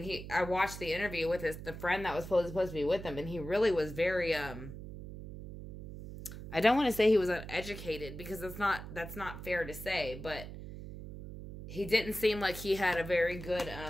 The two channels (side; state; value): right; noise; hum, 11 dB below the sound